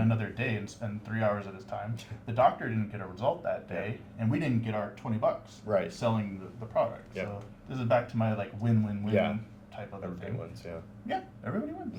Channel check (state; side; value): identical; both; correlation 1.00